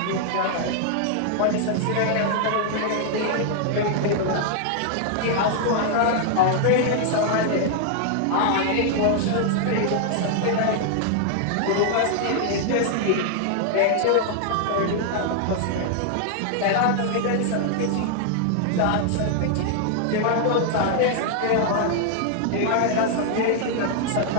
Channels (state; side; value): different; both; correlation 0.00